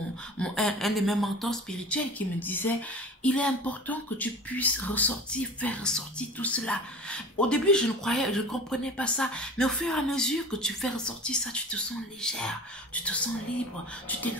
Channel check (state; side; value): normal; both; correlation 0.38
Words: de mes mentors spirituels qui me disait, il est important que tu puisses ressortir, faire ressortir tout cela. Au début, je ne comprenais pas ça. Mais au fur et à mesure que tu fais ressortir ça, tu te sens légère, tu te sens libre, tu te